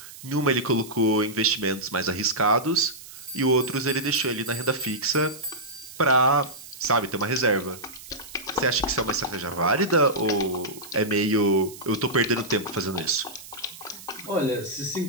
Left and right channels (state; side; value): noise; right; hiss, 16 dB below the sound